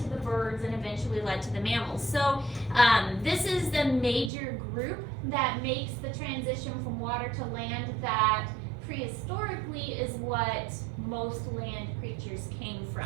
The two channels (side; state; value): left; drops out; at 4.3 s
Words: the birds, and eventually led to the mammals. So this is the major group that makes the transition from water to land that prehistorically is what most land creatures came